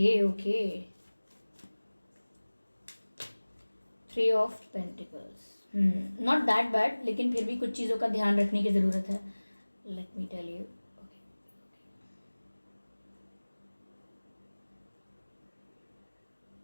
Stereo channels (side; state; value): both; inverted; correlation -1.00